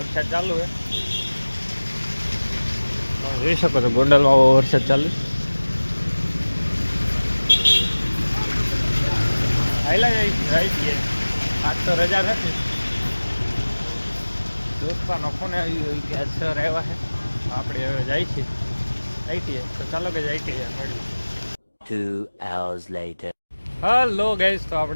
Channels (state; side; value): inverted; both; correlation -1.00